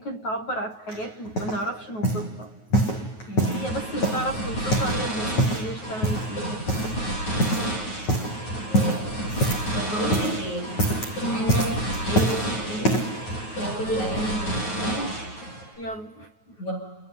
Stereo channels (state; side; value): late; right; 9.4 ms